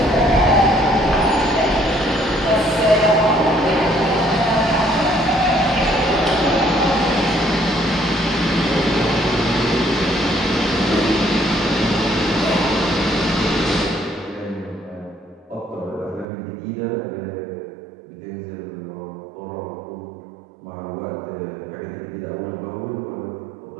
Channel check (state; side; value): drops out; left; at 16.2 s